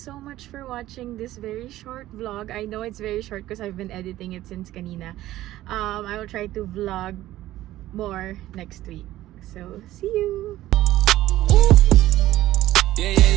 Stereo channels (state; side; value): quieter; left; 14.9 dB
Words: much for watching this very short vlog. I know it's very short because I've been editing it since kanina. I will try to vlog more next week. So, see you!